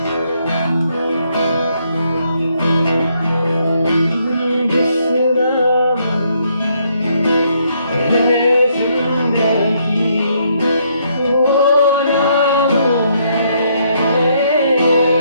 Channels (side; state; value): both; inverted; correlation -0.72